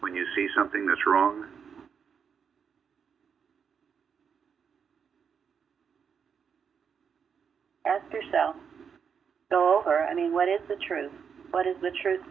you see something that's wrong? ask yourself, go over, what is the truth? What is the truth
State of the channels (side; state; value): left; quieter; 6.8 dB